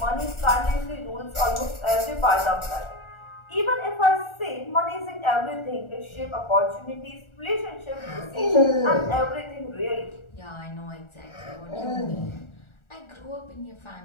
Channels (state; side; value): late; right; 1.4 ms